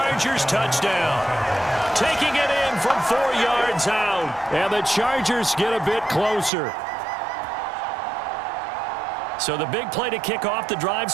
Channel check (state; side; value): drops out; left; at 6.5 s